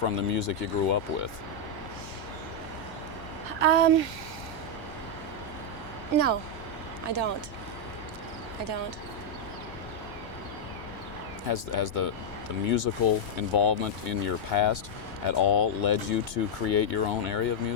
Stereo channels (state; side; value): normal; both; correlation -0.02